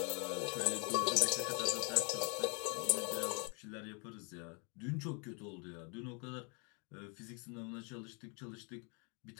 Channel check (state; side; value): quieter; right; 35.0 dB